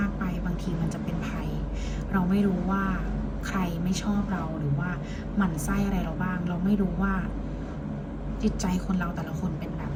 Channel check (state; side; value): identical; both; correlation 1.00